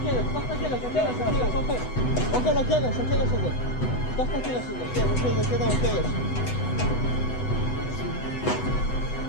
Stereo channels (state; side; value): late; right; 8.0 ms